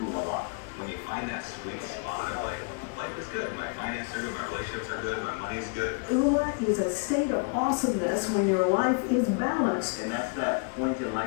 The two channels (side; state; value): right; quieter; 36.0 dB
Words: When you find that sweet spot of like, life is good, my finances are good, my relationships are good, my money's good. Oola is a state of awesomeness when your life is balanced. And that's that point in